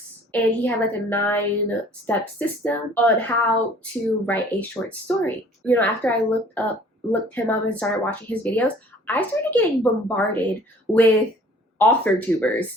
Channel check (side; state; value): both; normal; correlation 0.53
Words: And he had like a 9-step system on how to write a short story. You know, after I looked him up and started watching his videos, I started getting bombarded with